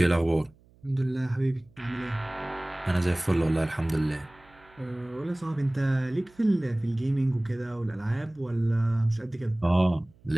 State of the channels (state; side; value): noise; right; hum, 29 dB below the sound